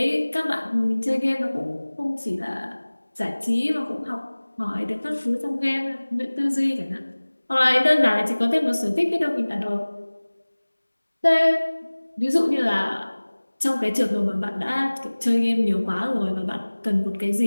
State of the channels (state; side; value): inverted; both; correlation -1.00